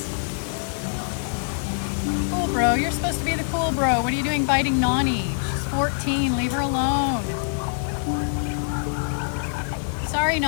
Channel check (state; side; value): silent; right; digital silence